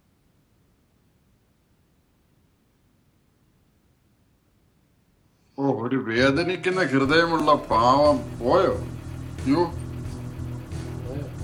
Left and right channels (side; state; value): both; identical; correlation 1.00